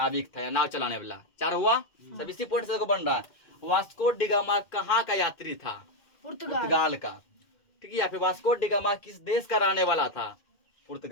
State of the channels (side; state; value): right; late; 2.1 ms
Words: था या नाव चलाने वाला। 4 हुआ। सब इसी पॉइंट से बन रहा है। वास्को डिगामा कहाँ का यात्री था, पुर्तगाल का, ठीक है। या फिर वास्को डिगामा किस देश का रहने वाला था,